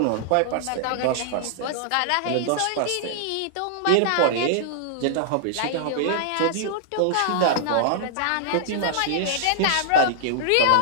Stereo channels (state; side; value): different; both; correlation -0.01